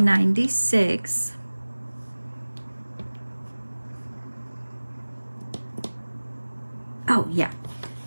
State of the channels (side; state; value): both; inverted; correlation -1.00